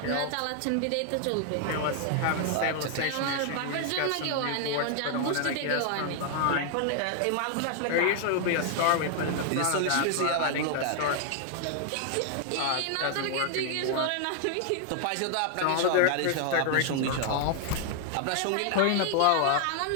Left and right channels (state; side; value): different; both; correlation 0.00